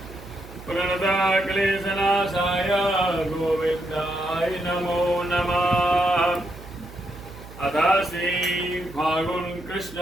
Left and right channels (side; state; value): right; noise; hum, 16 dB below the sound